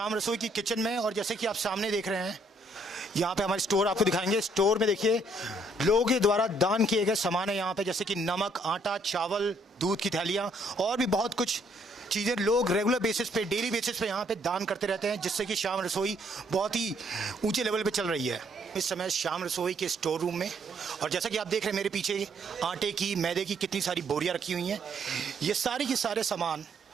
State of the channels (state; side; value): normal; both; correlation 0.68